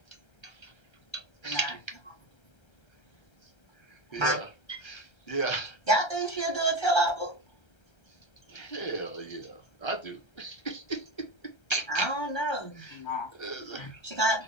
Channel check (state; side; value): late; right; 1.3 ms